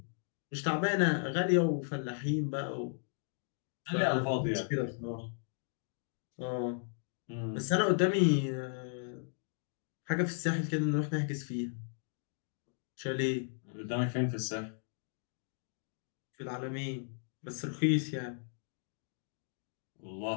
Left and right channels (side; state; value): right; silent; digital silence